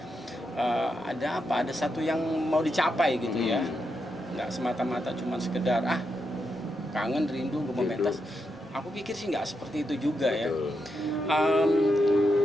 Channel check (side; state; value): both; normal; correlation 0.84